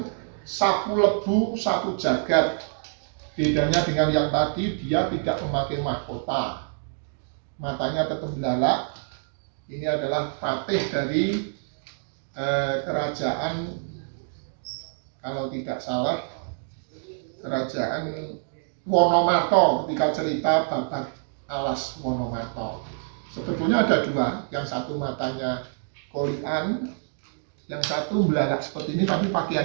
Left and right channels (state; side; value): silent; left; digital silence